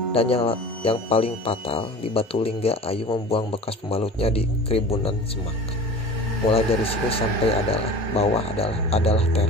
dan yang paling fatal di Batulingga, Ayu membuang bekas pembalutnya di keribunan semak. Mulai dari sini sampai bawah adalah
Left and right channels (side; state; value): both; normal; correlation 0.38